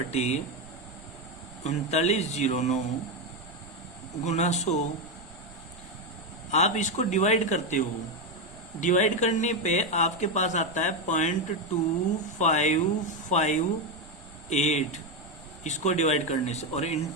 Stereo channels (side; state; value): right; noise; rumble, 22 dB below the sound